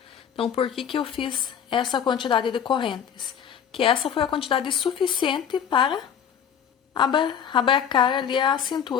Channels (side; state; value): right; quieter; 8.3 dB